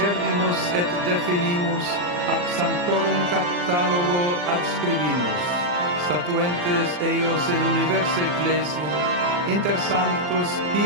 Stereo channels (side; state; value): left; late; 40 ms